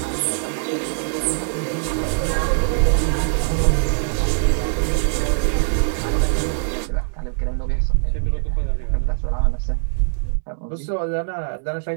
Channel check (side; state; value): left; silent; digital silence